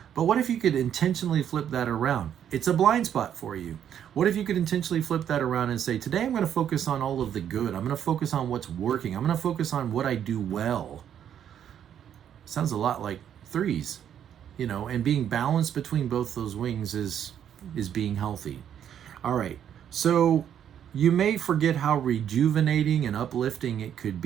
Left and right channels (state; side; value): quieter; left; 9.5 dB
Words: But what if you could intentionally flip that around? It's a blind spot for you. What if you could intentionally flip that around and say, today I'm going to focus on all of the good. I'm going to focus on what's working. I'm going to focus on what I do well. Sounds a lot like 3s, and being balanced between both those wings is being healthy. All right. So you may forget how rejuvenating and uplifting it could